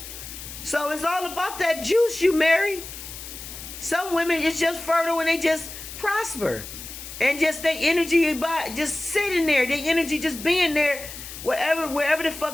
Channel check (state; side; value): noise; left; hiss, 12 dB below the sound